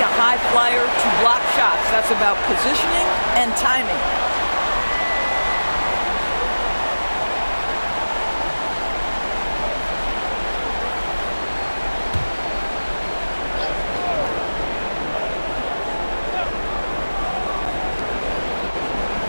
a high flyer to block shots. That's about positioning and timing.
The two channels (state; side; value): inverted; both; correlation -1.00